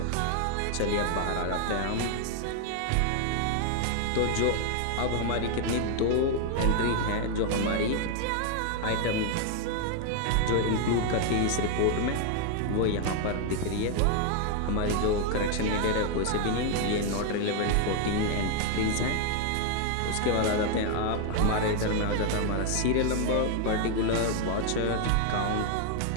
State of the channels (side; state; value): both; different; correlation 0.00